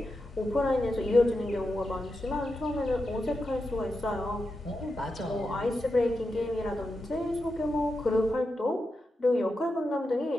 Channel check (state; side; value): normal; both; correlation 0.89